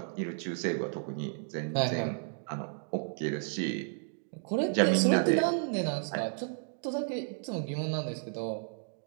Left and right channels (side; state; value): left; silent; 56 dB below the other